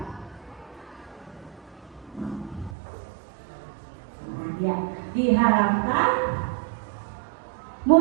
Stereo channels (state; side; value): drops out; left; at 2.8 s